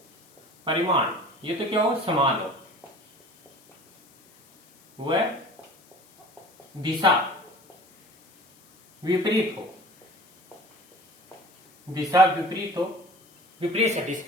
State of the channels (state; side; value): noise; left; hiss, 29 dB below the sound